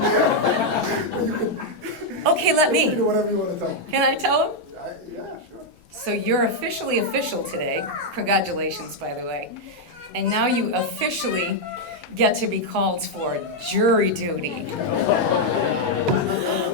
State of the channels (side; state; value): both; normal; correlation -0.01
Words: Okay, let me. Do whatever you want to tell. Can I tell them? Yeah, sure. So you're officially official today. Congratulations, by the way. And now you officially get to be called for jury duty.